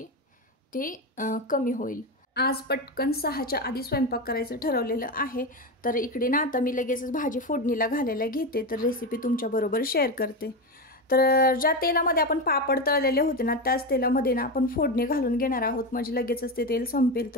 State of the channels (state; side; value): normal; both; correlation 0.16